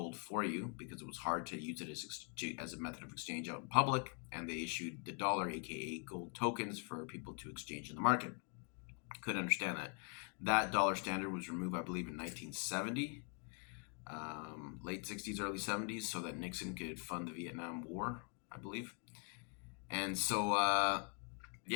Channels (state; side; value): quieter; right; 38.2 dB